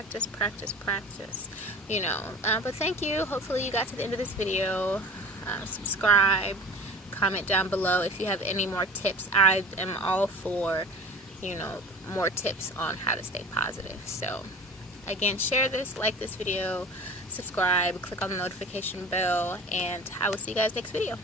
you know. But thank you. Hopefully you got to the end of this video. Subscribe, comment down below if you have any more tips. I am all for, you know, more tips on how to stay positive. So again, share this, like this video, subscribe, click on the notification bell, and I will see you guys next video.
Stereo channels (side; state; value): both; normal; correlation 0.39